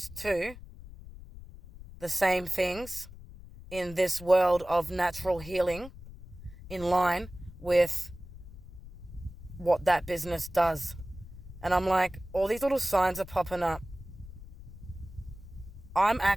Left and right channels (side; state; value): left; noise; rumble, 15 dB below the sound